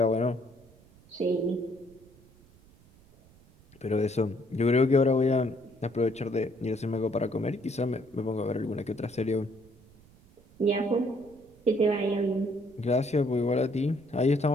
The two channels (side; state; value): right; noise; rumble, 27 dB below the sound